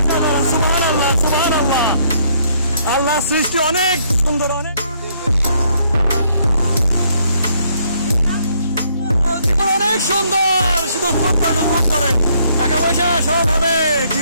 সুবহানাল্লাহ, সুবহানাল্লাহ। আল্লাহ সৃষ্টি অনেক সুন্দর, অনেক জীবন অনেক সুন্দর। শুধু উপভোগ করেন, টাকা পয়সা সব হবে,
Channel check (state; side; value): inverted; both; correlation -0.68